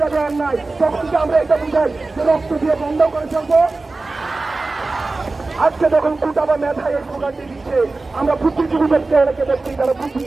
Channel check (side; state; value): left; quieter; 3.5 dB